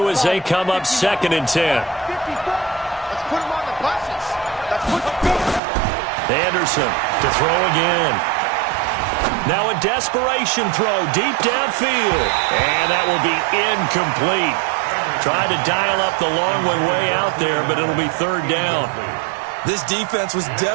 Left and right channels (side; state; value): left; drops out; at 5.6 s